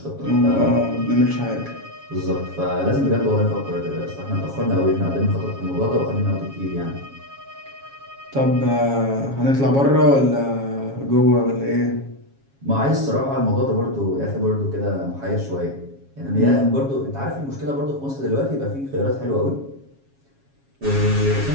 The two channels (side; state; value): left; late; 7.3 ms